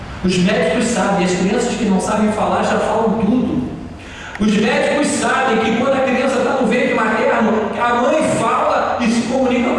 Os médicos sabem, as crianças que não sabem falar já falam tudo. Os médicos sabem que quando a criança está no ventre materno, a mãe fala e se comunica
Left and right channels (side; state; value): both; identical; correlation 1.00